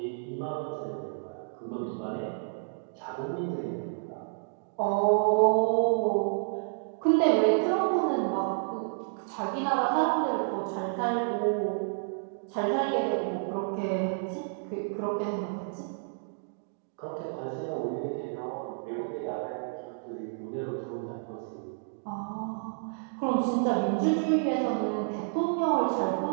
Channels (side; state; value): left; silent; digital silence